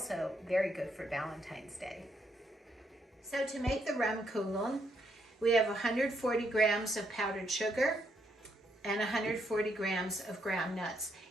very good for Valentine's Day. So to make the Rumkugeln, we have 140 grams of powdered sugar and 140 grams of ground nuts.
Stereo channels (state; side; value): normal; both; correlation 0.76